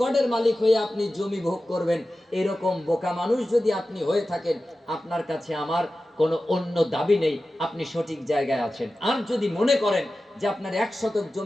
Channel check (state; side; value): normal; both; correlation 0.94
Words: মালিক হয়ে আপনি জমি ভোগ করবেন, এরকম বোকা মানুষ যদি আপনি হয়ে থাকেন, আপনার কাছে আমার কোনো অন্য দাবি নেই, আপনি সঠিক জায়গায় আছেন। আর যদি মনে করেন যে আপনার 1 শতক